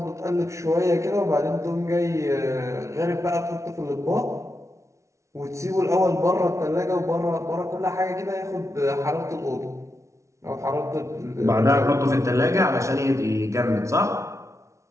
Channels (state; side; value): late; left; 0.14 ms